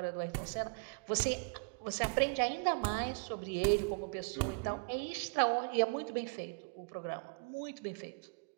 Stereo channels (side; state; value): left; quieter; 33.3 dB